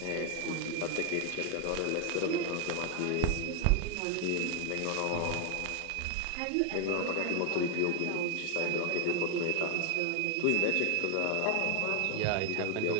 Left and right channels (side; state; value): both; different; correlation 0.00